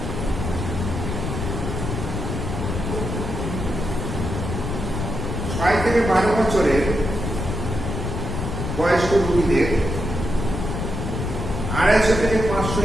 থেকে 12 বছরের বয়স্ক রোগীদের 250 থেকে 500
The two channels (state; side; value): noise; left; rumble, 4 dB below the sound